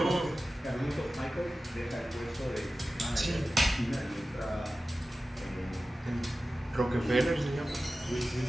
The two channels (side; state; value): both; normal; correlation 0.95